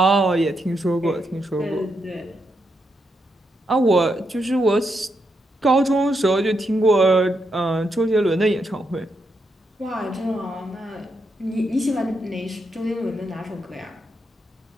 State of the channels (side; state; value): both; normal; correlation 0.81